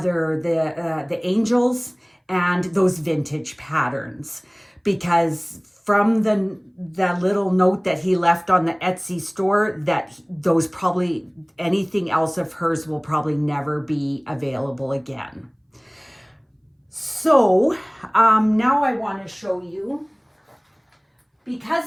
angels and those vintage patterns, because from the little note that he left on the Etsy store, that those probably, anything else of hers will probably never be available again. So now I want to show you,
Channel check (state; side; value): identical; both; correlation 1.00